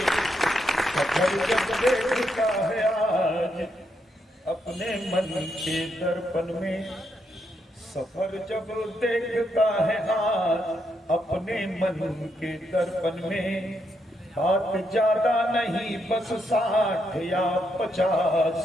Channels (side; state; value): both; normal; correlation 0.79